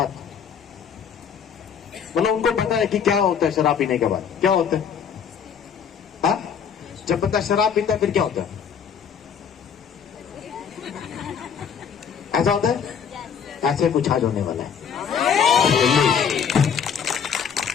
मतलब उनको पता है कि क्या होता है शराब पीने के बाद। क्या होता है? हा? जब बंदा शराब पीता है फिर क्या होता है? ऐसा होता है, ऐसे कुछ आज होने वाला है।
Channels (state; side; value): quieter; right; 7.3 dB